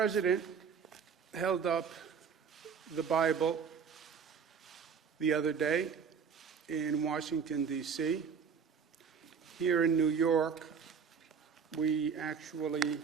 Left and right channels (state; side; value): quieter; left; 6.5 dB